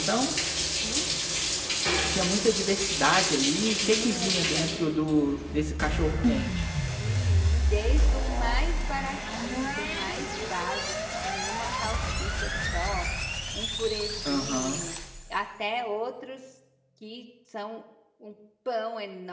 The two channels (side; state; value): both; identical; correlation 1.00